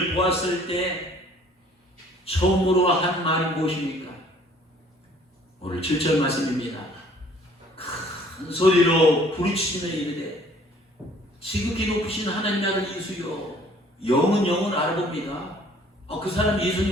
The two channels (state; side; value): normal; both; correlation 0.56